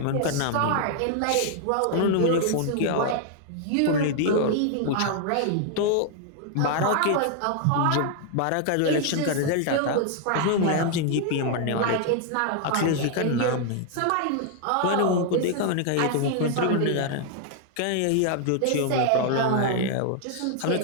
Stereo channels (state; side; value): different; both; correlation 0.00